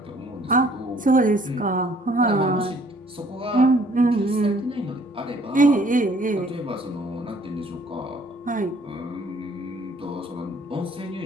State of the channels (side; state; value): both; normal; correlation 0.60